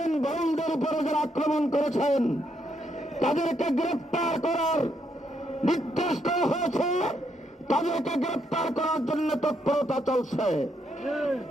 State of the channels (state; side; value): normal; both; correlation 0.76